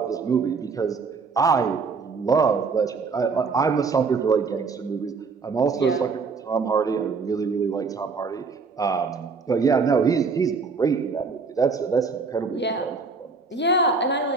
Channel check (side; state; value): left; quieter; 4.7 dB